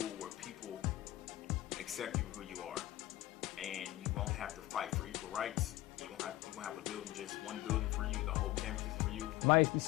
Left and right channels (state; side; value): quieter; right; 16.4 dB